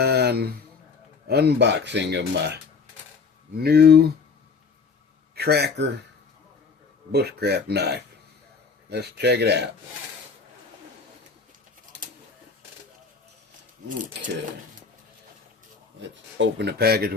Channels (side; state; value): right; quieter; 5.0 dB